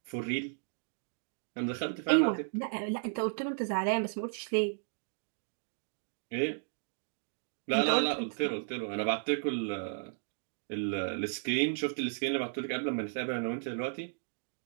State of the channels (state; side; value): silent; left; digital silence